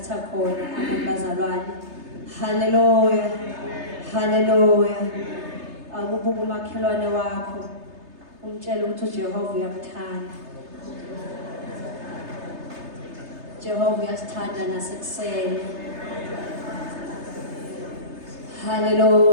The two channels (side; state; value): left; late; 3.3 ms